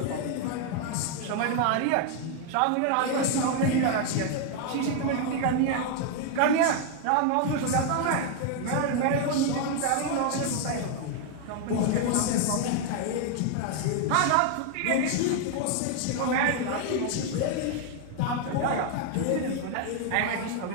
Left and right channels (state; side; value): different; both; correlation 0.00